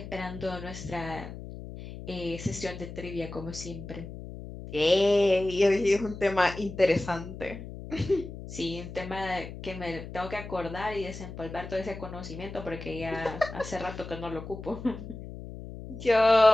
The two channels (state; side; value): noise; left; hum, 11 dB below the sound